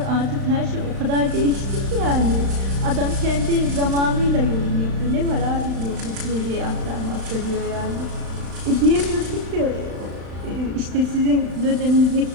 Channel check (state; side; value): late; left; 35 ms